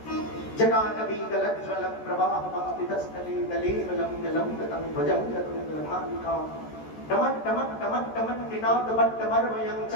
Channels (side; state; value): right; late; 14 ms